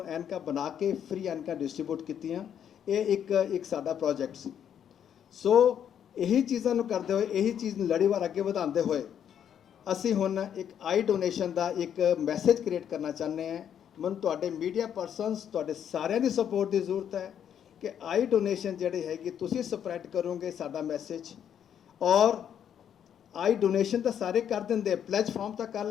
ਐਨਕਾਂ ਬਣਾ ਕੇ ਫ੍ਰੀ ਐਨਕਾਂ ਡਿਸਟ੍ਰੀਬਿਊਟ ਕੀਤੀਆਂ। ਇਹ ਇੱਕ ਸਾਡਾ ਪ੍ਰੋਜੈਕਟ ਸੀ। ਸੋ ਇਹੀ ਚੀਜ਼ਾਂ ਨੂੰ ਕਰਦੇ ਹੋਏ, ਇਹੀ ਚੀਜ਼ ਨੂੰ ਲੜੀਵਾਰ ਅੱਗੇ ਵਧਾਉਂਦੇ ਹੋਏ ਅਸੀਂ ਹੁਣ ਇੱਕ ਆਈ ਡੋਨੇਸ਼ਨ ਦਾ ਇੱਕ ਮੈਸੇਜ ਕ੍ਰੀਏਟ ਕਰਨਾ ਚਾਹੁੰਦੇ ਹਾਂ। ਮੈਨੂੰ ਤੁਹਾਡੇ ਮੀਡੀਆ ਪਰਸਨਸ, ਤੁਹਾਡੇ ਸਾਰਿਆਂ ਦੀ ਸਪੋਰਟ ਦੀ ਜ਼ਰੂਰਤ ਹੈ ਕਿ ਆਈ ਡੋਨੇਸ਼ਨ ਜਿਹੜੀ ਹੈਗੀ ਤੁਸੀਂ ਸਪਰੈਡ ਕਰੋਗੇ ਸਾਡਾ ਮੈਸੇਜ। ਔਰ ਆਈ ਡੋਨੇਸ਼ਨ ਤਾਂ ਸਾਰੇ ਕਰ ਦਿੰਦੇ, ਪਲੇਜ ਫਾਰਮ ਤਾਂ ਕਰ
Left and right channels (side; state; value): right; quieter; 9.1 dB